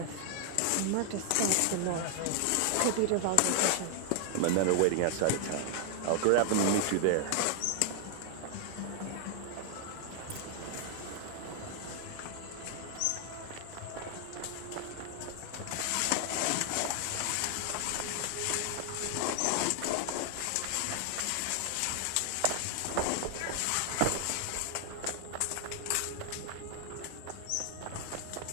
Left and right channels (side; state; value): both; different; correlation 0.00